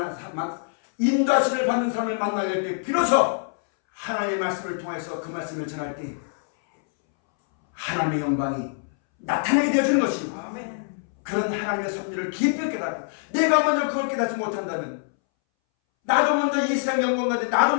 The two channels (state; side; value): silent; right; 62 dB below the other